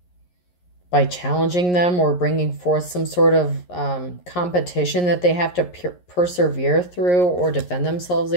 by challenging them or bringing forth some sort of competition that they have to persevere through or defend themselves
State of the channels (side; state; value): right; late; 11 ms